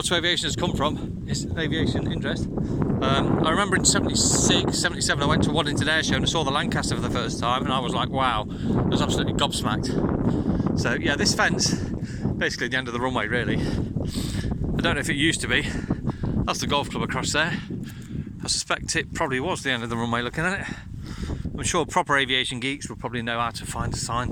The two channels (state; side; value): identical; both; correlation 1.00